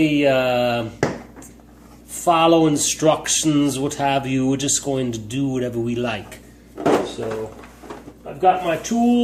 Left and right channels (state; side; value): identical; both; correlation 1.00